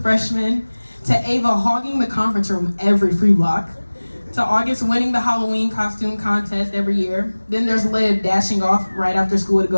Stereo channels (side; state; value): both; inverted; correlation -1.00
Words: freshmen. To Ava hogging the conference room every free block. To August winning the Halloween costume contest every year. Then there's Liv dashing off right after school to